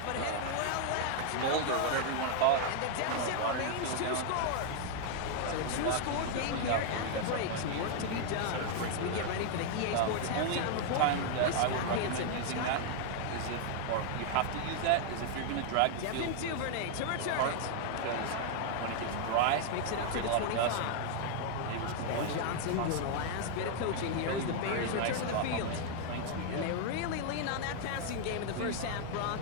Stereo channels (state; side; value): different; both; correlation 0.00